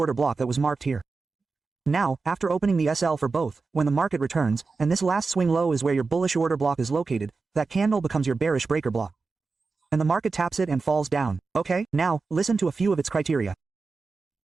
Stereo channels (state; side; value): quieter; left; 4.3 dB